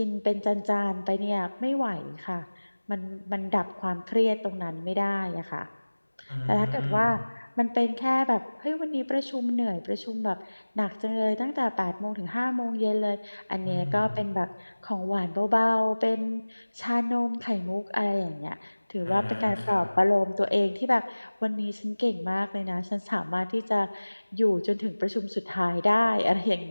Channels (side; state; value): both; inverted; correlation -1.00